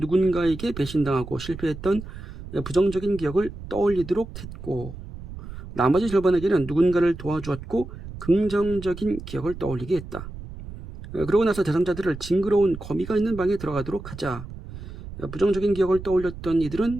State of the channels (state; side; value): noise; right; rumble, 12 dB below the sound